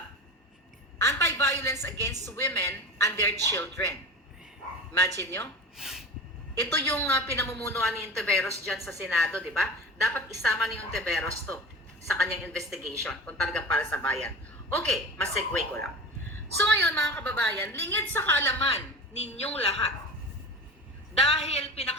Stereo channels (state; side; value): normal; both; correlation 0.32